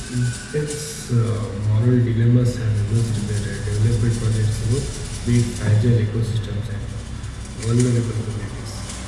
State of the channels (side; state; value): both; identical; correlation 1.00